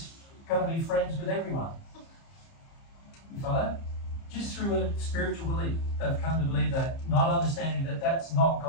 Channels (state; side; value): late; right; 30 ms